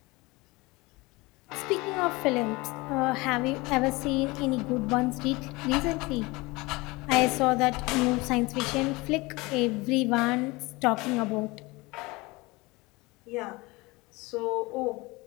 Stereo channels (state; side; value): quieter; right; 23.4 dB